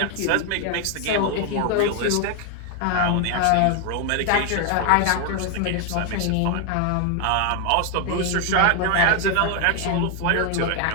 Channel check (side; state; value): both; different; correlation 0.01